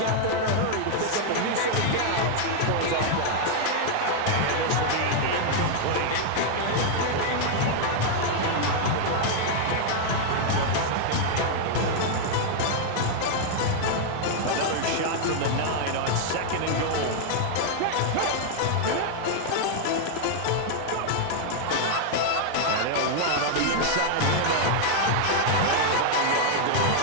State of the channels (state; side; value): different; both; correlation 0.00